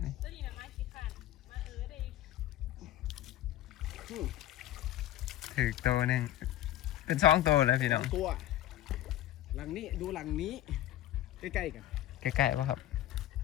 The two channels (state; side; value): quieter; right; 13.4 dB